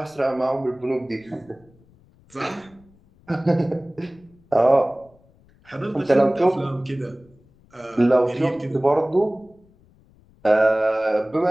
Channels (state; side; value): noise; left; rumble, 30 dB below the sound